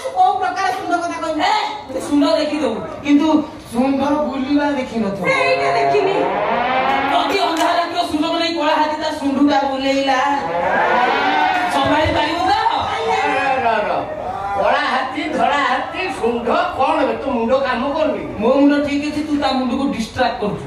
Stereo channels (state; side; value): identical; both; correlation 1.00